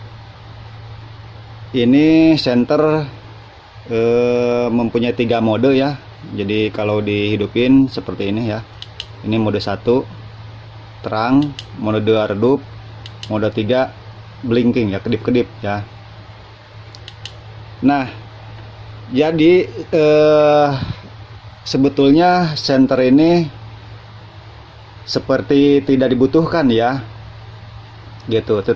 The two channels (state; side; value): identical; both; correlation 1.00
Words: Ini center mempunyai 3 mode ya. Jadi kalau dihidupin seperti ini ya. Ini mode 1 terang, mode 2 redup, mode 3 blinking ya, kedip-kedip ya. Nah, jadi sebetulnya senter ini seperti tidak dibutuhkan ya, gitu.